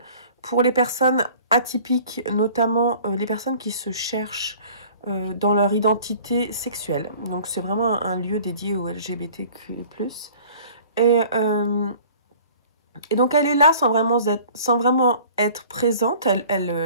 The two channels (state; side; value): inverted; both; correlation -0.49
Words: pour les personnes atypiques, notamment les personnes qui se cherchent dans leur identité sexuelle. Donc c'est vraiment un lieu dédié aux LGBTQ+. Et Et donc elle est là sans vraiment être présente,